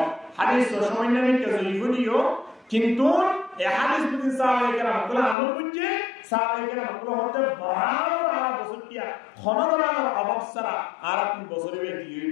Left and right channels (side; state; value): right; drops out; at 5.4 s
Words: হাদিস সামান্য নিতে জয়ফুনিও কিন্তু এই হাদিস বুঝি সাহাবায়ে কেরাম কলা আমল বুঝে সাহাবায়ে কেরাম কলা হতে বরাবর আর বসটিয়া খনদরার অভাব সারা আর আপনি বছরে দিয়ে